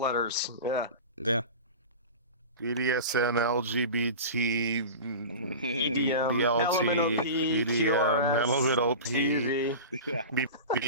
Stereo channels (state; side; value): inverted; both; correlation -0.31